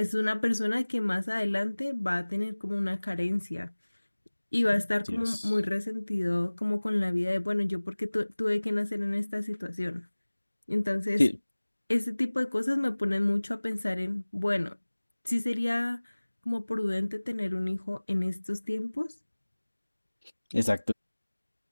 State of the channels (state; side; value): inverted; both; correlation -1.00